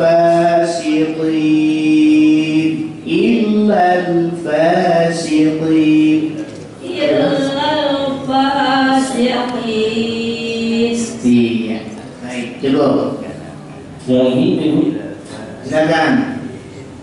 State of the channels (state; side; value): identical; both; correlation 1.00